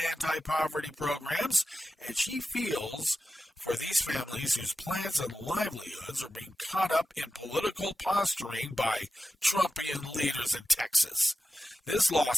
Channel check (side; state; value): both; normal; correlation 0.92